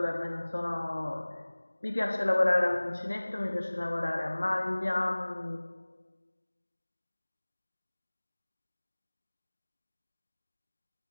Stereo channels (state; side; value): inverted; both; correlation -1.00